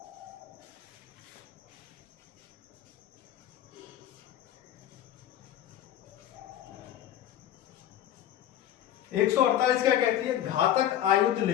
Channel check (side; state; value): right; quieter; 11.6 dB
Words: एक 148 क्या कहती है? घातक आयुध